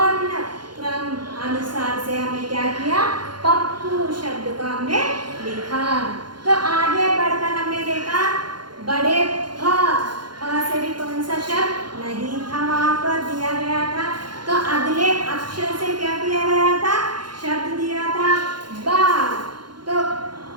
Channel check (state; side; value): late; left; 0.71 ms